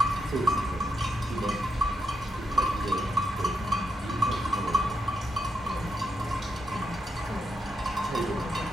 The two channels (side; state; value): both; normal; correlation 0.81